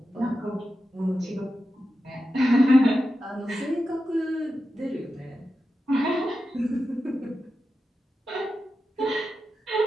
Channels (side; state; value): both; normal; correlation 0.91